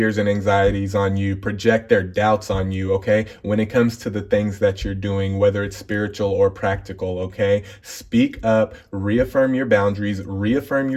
and anxieties on you, project their doubts on you, okay? When it comes to the things that you're doing, whether it's spiritual or practical, okay? Speak up, reaffirm your boundaries, reaffirm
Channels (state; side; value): identical; both; correlation 1.00